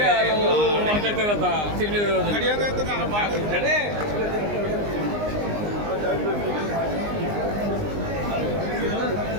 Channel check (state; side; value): late; left; 19 ms